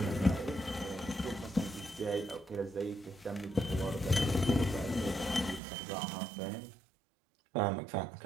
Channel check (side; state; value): left; drops out; at 5.6 s